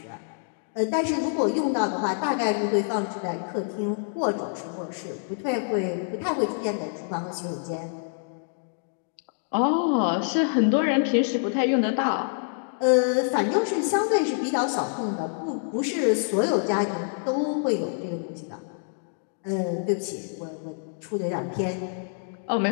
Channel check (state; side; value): silent; right; digital silence